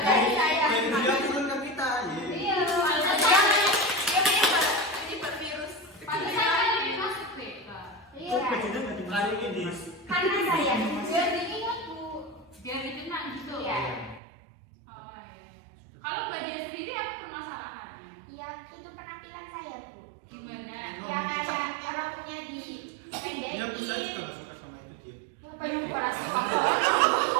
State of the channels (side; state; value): left; drops out; at 14.2 s